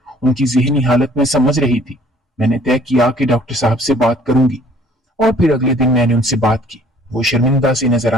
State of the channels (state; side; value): normal; both; correlation 0.56